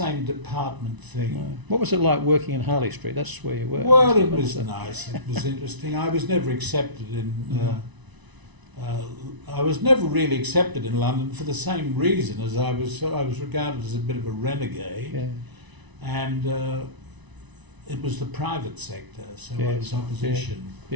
department thing. No. What was it like working in Harley Street? That's where you were. Well, it was nice. It was interesting. I was never accepted in. I was never really accepted in London for the same reason as I was regarded as a bit of a renegade, and it was the private sector, so I was opposition.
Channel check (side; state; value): left; late; 1.0 ms